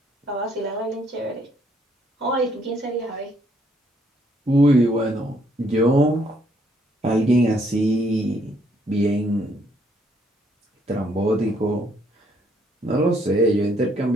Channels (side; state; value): both; normal; correlation 0.69